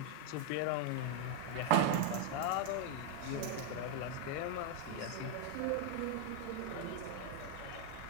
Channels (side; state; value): both; different; correlation 0.01